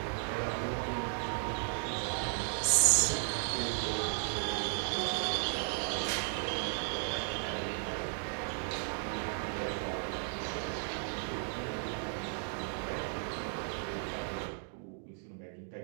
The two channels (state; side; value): silent; left; 54 dB below the other